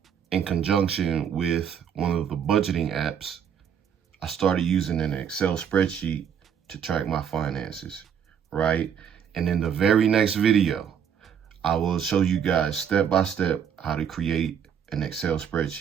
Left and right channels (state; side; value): quieter; left; 8.1 dB